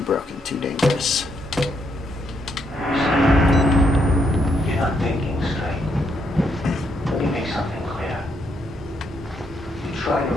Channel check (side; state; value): both; normal; correlation 0.76